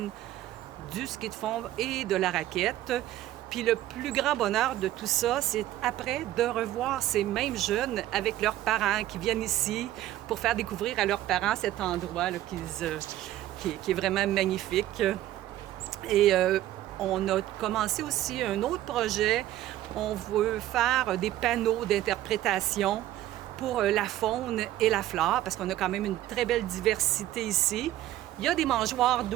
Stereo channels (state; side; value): quieter; left; 13.9 dB